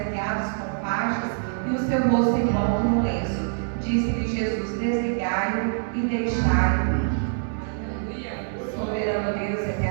ligados com faixas, e o seu rosto envolto num lenço. Disse-lhe Jesus: Desligai-o e deixai-o ir. Soberano Deus,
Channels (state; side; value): silent; left; 62 dB below the other